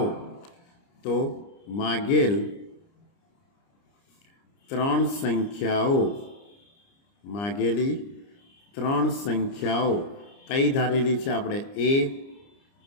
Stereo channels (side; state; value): right; late; 30 ms